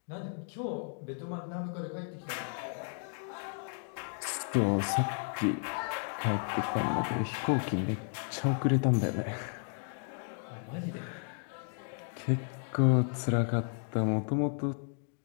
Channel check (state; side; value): silent; right; 55 dB below the other